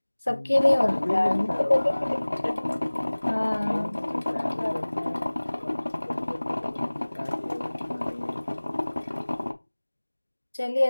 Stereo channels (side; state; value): both; inverted; correlation -1.00